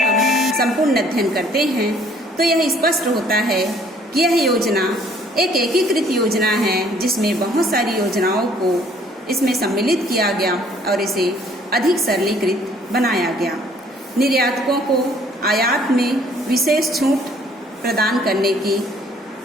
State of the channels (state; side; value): normal; both; correlation 0.59